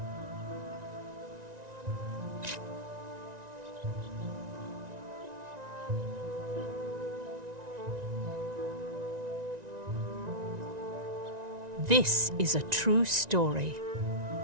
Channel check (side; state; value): left; late; 1.9 ms